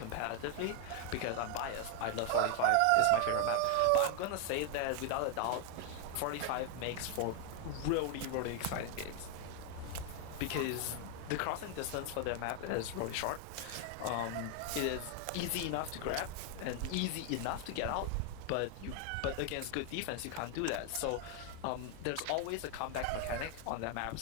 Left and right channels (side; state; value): both; different; correlation 0.00